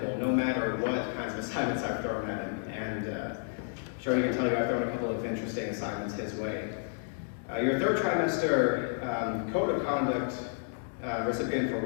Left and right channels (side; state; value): right; silent; digital silence